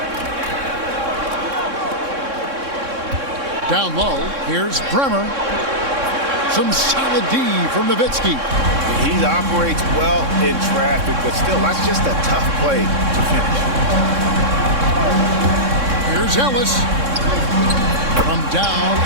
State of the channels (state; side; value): late; left; 3.6 ms